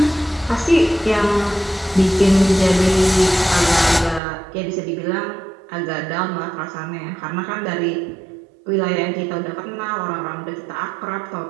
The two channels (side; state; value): left; drops out; at 4.2 s